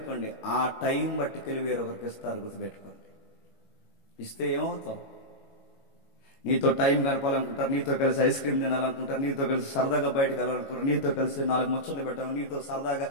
ఆ టైం బట్టికెళ్ళి వేరొకరికి ఇస్తారు. గుర్తుపెట్టుకోండి. ఇస్తే ఏమవుతావు? నీతో టైం గడపాలనుకుంటారు, నీతో కలిసి ఐస్ క్రీమ్ తినాలనుకుంటారు, నీతో కలిసి సరదాగా బయటకు వెళ్ళాలనుకుంటారు, నీతో కలిసి 4 ముచ్చట్లు పెట్టాలి, నీతో సరదాగా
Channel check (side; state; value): right; late; 22 ms